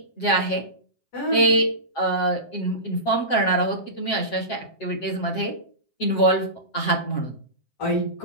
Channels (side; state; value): right; late; 7.5 ms